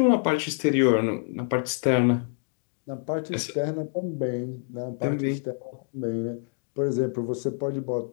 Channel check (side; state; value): right; silent; digital silence